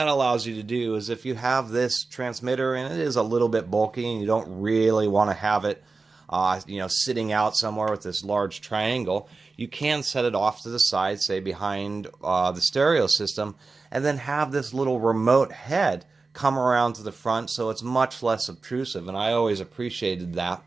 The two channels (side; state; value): left; quieter; 4.0 dB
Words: allows you to do is, if you have this transmitter and it is a little bit bulky and you don't really want to have it sitting out somewhere with this large triangle, you can set it off to the side, say behind the stereo system, and then have this little remote head come around to the front, so it's much less obtrusive, and I always appreciated that.